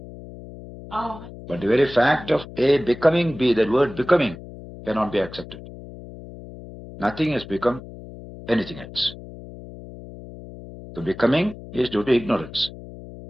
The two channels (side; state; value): left; noise; hum, 15 dB below the sound